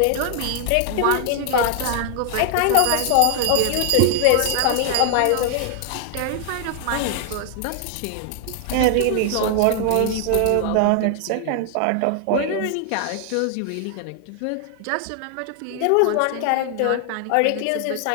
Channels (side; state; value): both; different; correlation 0.00